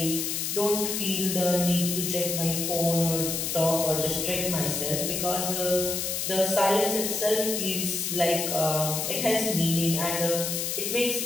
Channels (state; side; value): noise; left; hiss, 1 dB below the sound